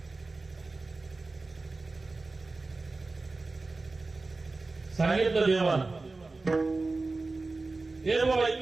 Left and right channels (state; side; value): quieter; left; 3.5 dB